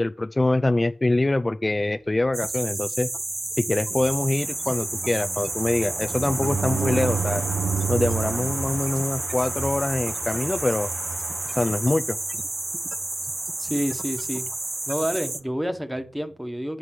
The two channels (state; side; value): normal; both; correlation 0.96